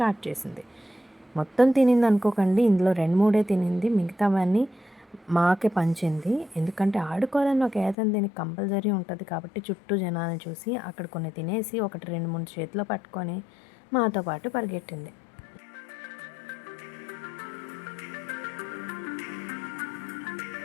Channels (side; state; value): right; drops out; at 8.0 s